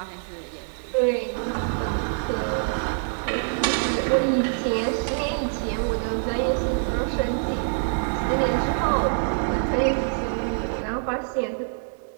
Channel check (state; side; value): silent; left; 57 dB below the other